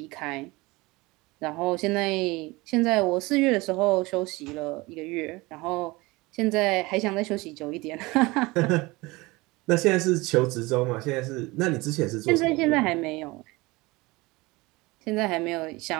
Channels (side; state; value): left; quieter; 22.5 dB